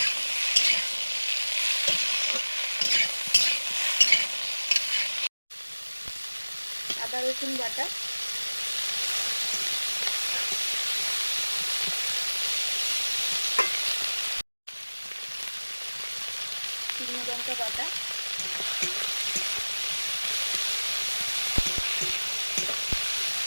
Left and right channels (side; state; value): both; inverted; correlation -1.00